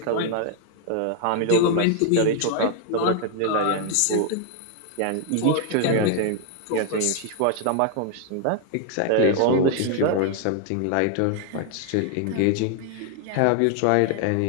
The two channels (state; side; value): different; both; correlation 0.00